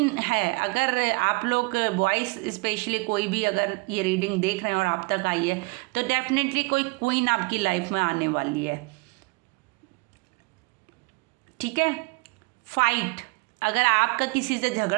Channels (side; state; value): left; quieter; 26.3 dB